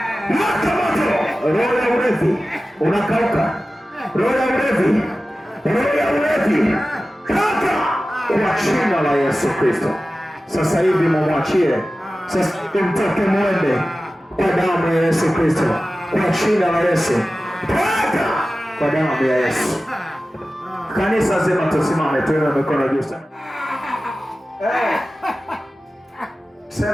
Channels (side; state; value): both; normal; correlation 0.95